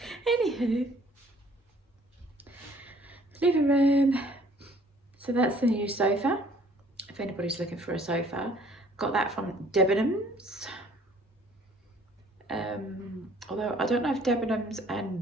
Anywho, living room. So that's the new sofa. If anybody's looking for a sofa, got that from Debenhams. Although I don't know if Debenhams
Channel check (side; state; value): both; normal; correlation 0.57